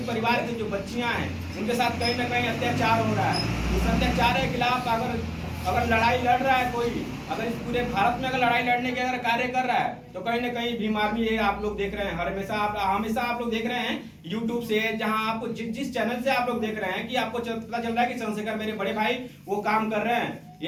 परिवार की जो बच्चियां हैं, उनके साथ कहीं ना कहीं अत्याचार हो रहा है। इस अत्याचार के खिलाफ अगर लड़ाई लड़ रहा है कोई, अगर इस पूरे भारत में अगर लड़ाई लड़ने के अगर कार्य कर रहा है, तो कहीं ना कहीं भीम आर्मी ये आप लोग देख रहे हैं। हमेशा आप लोग देख रहे हैं यूट्यूब से, जहां आपको जिस चैनल से आप लोग देख रहे हैं कि आपको पता चल रहा है कि चंद्रशेखर मेरे बड़े भाई वो काम कर रहे हैं।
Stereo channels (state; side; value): identical; both; correlation 1.00